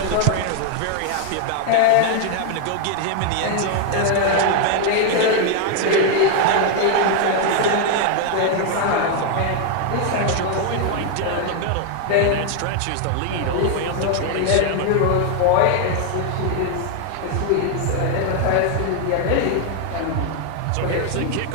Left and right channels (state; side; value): different; both; correlation 0.00